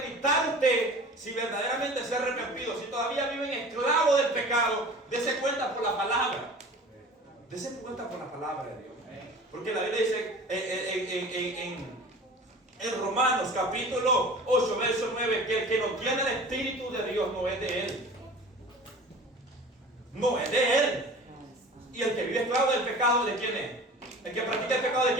usted si verdaderamente se ha arrepentido. Si todavía vive en esclavo del pecado, dése cuenta por la palabra. Dése cuenta por la palabra de Dios. Porque la Biblia dice en Romanos capítulo 8, verso 9, que el que no tiene el Espíritu de Dios no es de él. No es de él. Y el que vive esclavo del pecado, ¿de quién es? El que practica el pecado, ¿de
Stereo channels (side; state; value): both; normal; correlation 0.41